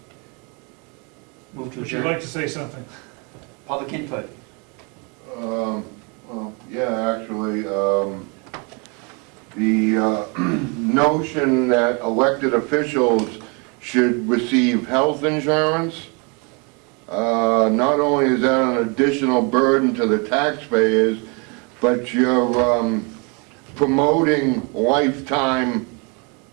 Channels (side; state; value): left; quieter; 32.7 dB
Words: Move to Would you adjourn. like to say something? Public input. Well, yeah, actually, the notion that elected officials should receive health insurance, not only is that an additional burden to the taxpayers, but you're promoting lifetime